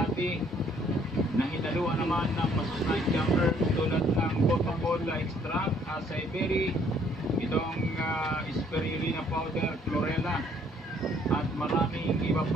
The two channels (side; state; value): both; normal; correlation 0.63